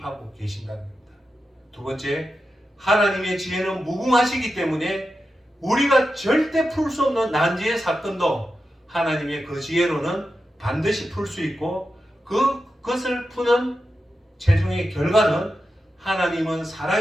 계신다는 겁니다. 두 번째, 하나님의 지혜는 무궁하시기 때문에 우리가 절대 풀 수 없는 난제의 사건도 하나님의 그 지혜로는 반드시 풀 수 있고, 그것을 푸는 최종의 결과는 하나님은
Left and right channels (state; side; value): normal; both; correlation 0.90